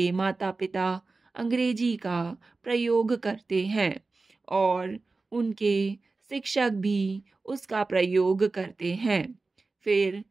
माता पिता अंग्रेजी का प्रयोग करते हैं और उनके शिक्षक भी उसका प्रयोग करते हैं। फिर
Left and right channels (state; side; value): quieter; left; 3.7 dB